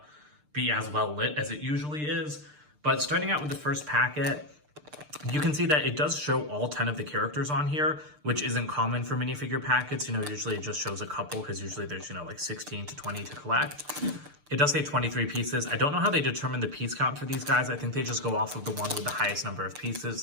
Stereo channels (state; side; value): late; left; 6.7 ms